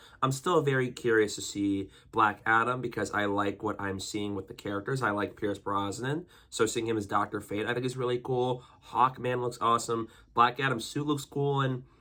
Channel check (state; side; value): identical; both; correlation 1.00